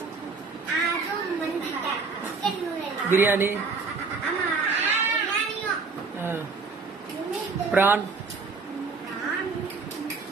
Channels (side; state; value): left; quieter; 4.5 dB